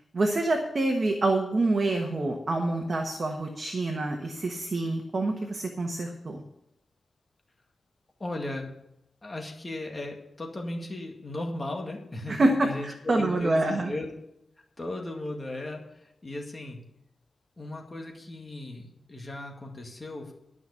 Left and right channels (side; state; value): both; normal; correlation 0.91